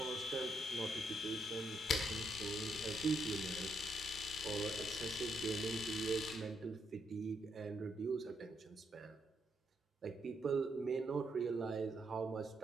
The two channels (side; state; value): both; normal; correlation 0.77